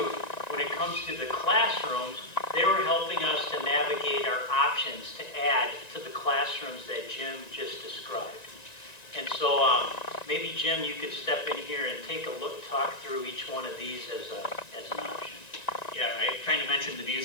the classrooms, they were helping us to navigate our options to add to the classrooms that Jim just described. And so maybe Jim, you could step in here and take a look, talk through each one of these as an option. Yeah, I kind of mentioned the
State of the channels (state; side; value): late; right; 1.9 ms